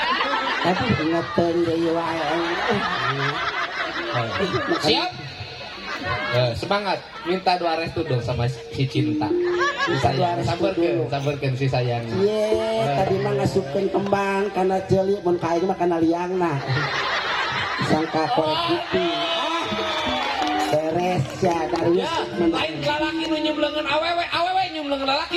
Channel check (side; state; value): both; identical; correlation 1.00